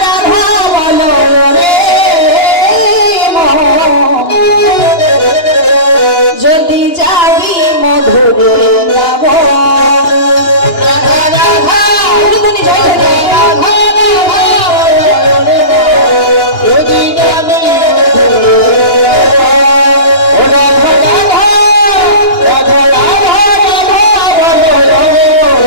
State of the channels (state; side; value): late; right; 2.9 ms